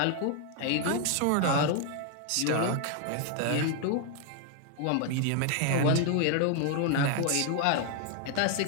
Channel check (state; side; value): different; both; correlation 0.00